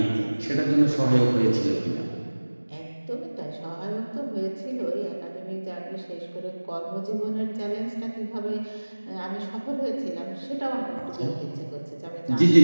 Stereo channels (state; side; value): inverted; both; correlation -1.00